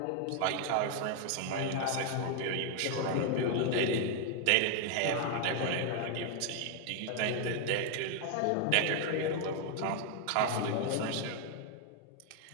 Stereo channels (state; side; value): different; both; correlation 0.00